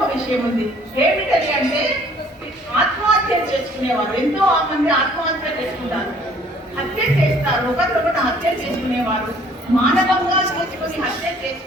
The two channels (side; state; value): both; normal; correlation 0.57